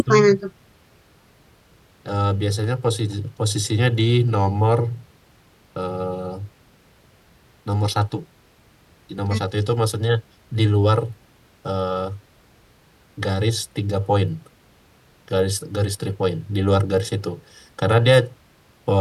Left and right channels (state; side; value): identical; both; correlation 1.00